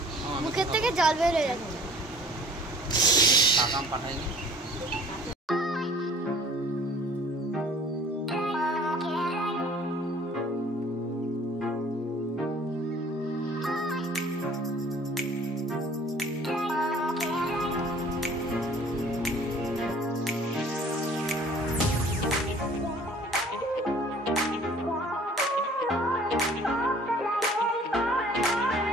মুখের থেকে জল বের হয়ে যাচ্ছে। কাকাম পাঠাইনি।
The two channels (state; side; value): normal; both; correlation 0.51